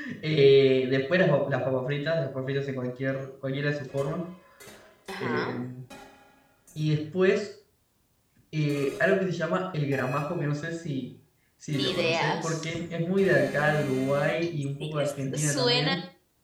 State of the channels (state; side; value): identical; both; correlation 1.00